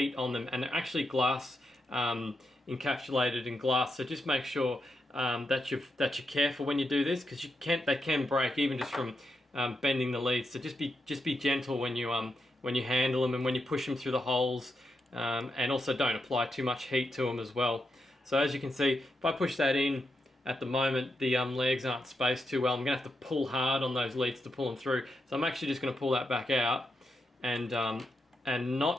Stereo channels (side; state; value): both; normal; correlation 0.84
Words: on them, and they're actually glass, encapsulated in glass, so just make sure that you're careful when you do this, because they can break even just from bending the leads. So just be gentle when you handle them and when you push them through the holes, and also don't apply too much heat to them as well. So as you can see, if I push that in, at the moment the legs aren't spaced too well. I'm going to have to pull hard on those leads to pull them through. So I'm actually just going to pull that back out and